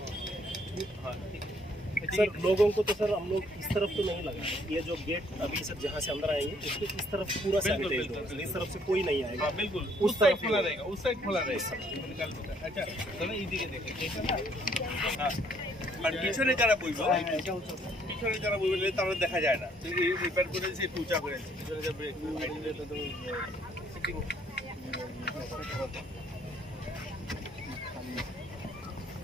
हाँ सर लोगों को तो सर हम लोग इस तरफ तो नहीं लगा ये जो गेट अभी सर जहाँ से अंदर आएंगे उसके इस तरफ पूरा सैनिटाइज होगा इस तरफ से कोई नहीं आएगा बिल्कुल उस साइड खुला रहेगा उस साइड खुला रहेगा अच्छा चलो इजी के देखें हाँ আর পিছনে যারা বইব পিছনে যারা বইবে তারা দেখা যায় না তো এই রিপেয়ার করে সে টুচা করে পিছনে যা ব্রেক আইডিলে তো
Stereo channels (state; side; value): normal; both; correlation 0.65